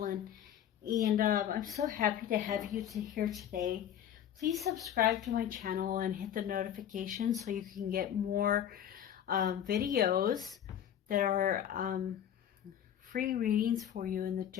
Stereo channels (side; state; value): right; quieter; 10.0 dB